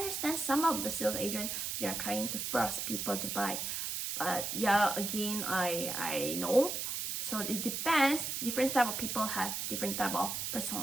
some of the sales agents, they are trying to force people to buy. But yeah, again, I know. So it depends. Different type of people have different type of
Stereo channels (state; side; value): noise; right; hiss, 2 dB below the sound